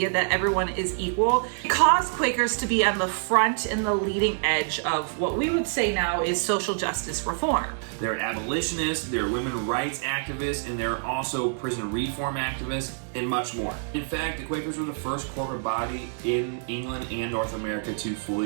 that everyone is equal, it caused Quakers to be on the front and the leading edge of what we would say now is social justice reform. They're abolitionists, they're women rights activists, and they're also prison reform activists, and much more. In fact, the Quakers were the first corporate body in England and North America to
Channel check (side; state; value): left; silent; digital silence